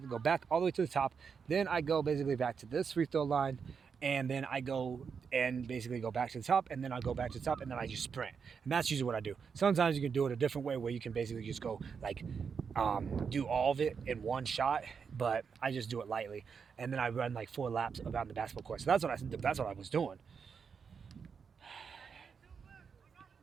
go back all the way to the top. Then I go basically back to this free throw line, and then I go and basically go back to the top, and then I go back to the top, and then I just sprint. And that's usually what I do. Sometimes you can do it a different way where you can basically just go like do all of it in one shot, but I just do it lightly, and then I run like 4 laps around the basketball court. So that's what I was doing.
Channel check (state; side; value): quieter; left; 6.2 dB